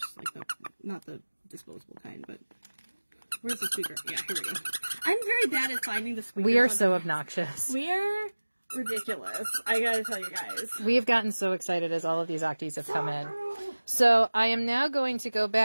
Like, not the disposable kind, but... Where's the squeaker? Yeah, here we go. I'm very bad at finding the squeaker. We are so obnoxious. We're ridiculous. I gotta tell you guys. We have gotten so excited as all of these octies have come in. So I am now going to go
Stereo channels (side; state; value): both; inverted; correlation -1.00